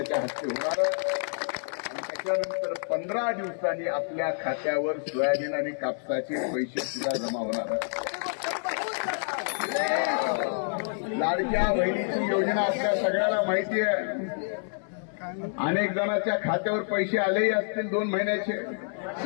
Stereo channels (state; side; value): silent; right; 58 dB below the other